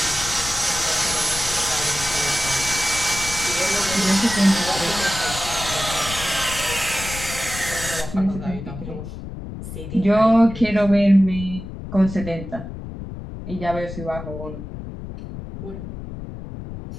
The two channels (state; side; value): noise; left; rumble, 10 dB below the sound